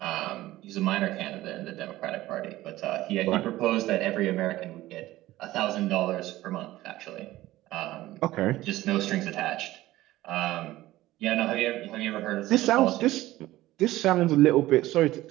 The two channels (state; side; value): quieter; left; 16.5 dB